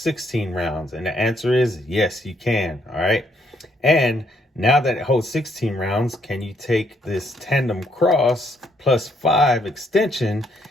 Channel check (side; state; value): both; normal; correlation 0.71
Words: rounds? And the answer is yes, you can. All right. And now that it holds 16 rounds, can you take this tandem cross plus 5 extension